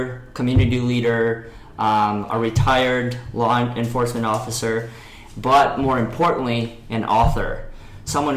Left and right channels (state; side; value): identical; both; correlation 1.00